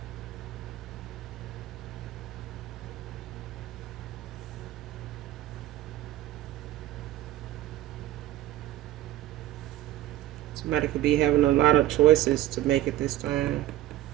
Somebody could be having a lot of choices to make at this time.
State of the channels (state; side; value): quieter; left; 14.4 dB